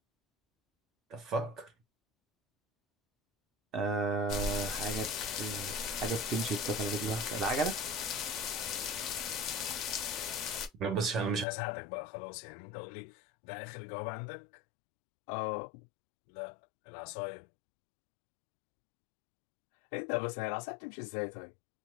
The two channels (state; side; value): drops out; right; at 11.5 s